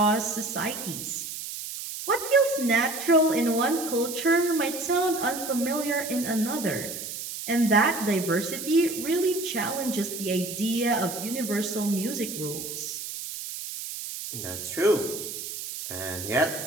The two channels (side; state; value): right; noise; hiss, 8 dB below the sound